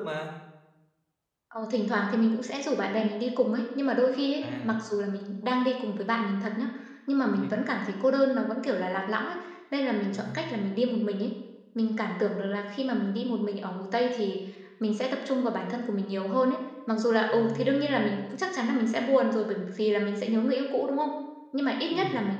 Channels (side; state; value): both; identical; correlation 1.00